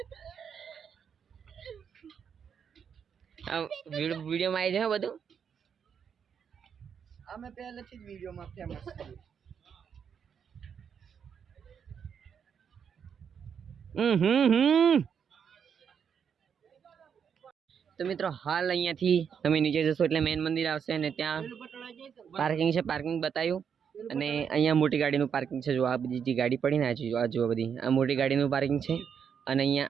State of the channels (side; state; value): left; quieter; 7.4 dB